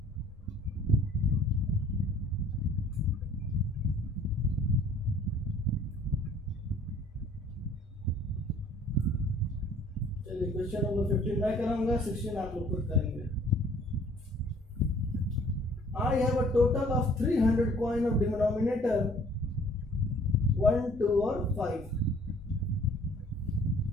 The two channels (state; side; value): normal; both; correlation 0.55